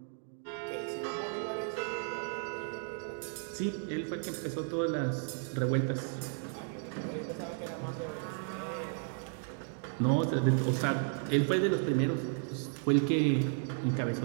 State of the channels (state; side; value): silent; left; 55 dB below the other